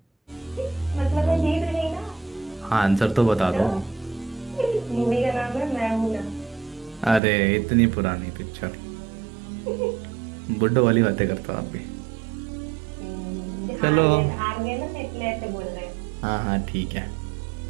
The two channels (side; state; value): left; drops out; at 7.2 s